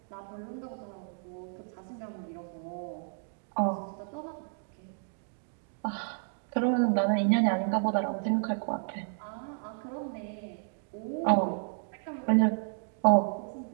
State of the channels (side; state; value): left; silent; 57 dB below the other